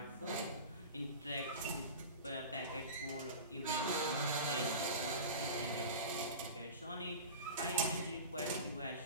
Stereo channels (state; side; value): inverted; both; correlation -0.32